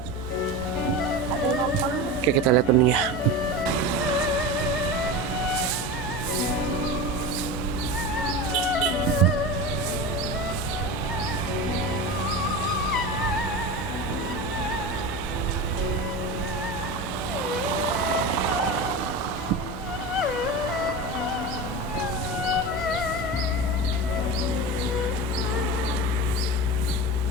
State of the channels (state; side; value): noise; left; hum, 14 dB below the sound